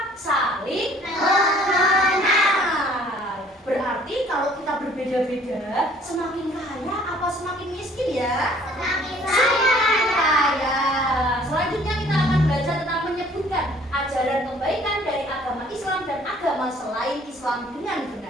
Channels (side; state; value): both; normal; correlation 0.56